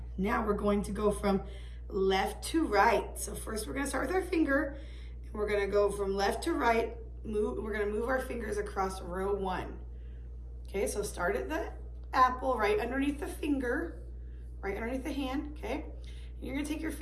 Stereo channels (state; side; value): identical; both; correlation 1.00